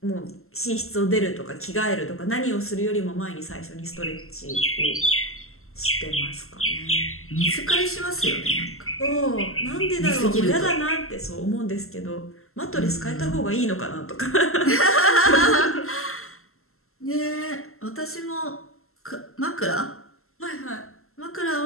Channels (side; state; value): right; late; 0.62 ms